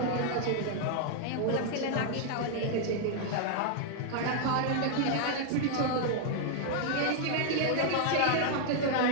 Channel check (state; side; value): different; both; correlation 0.00